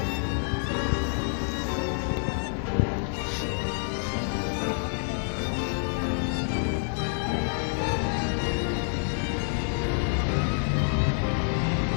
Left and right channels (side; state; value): right; silent; 60 dB below the other